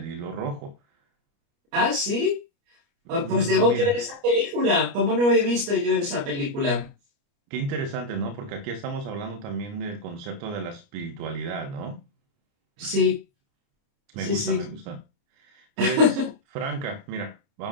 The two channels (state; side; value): late; left; 29 ms